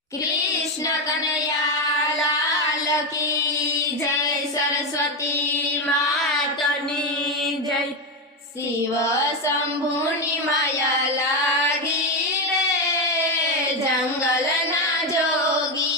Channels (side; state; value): both; normal; correlation 0.11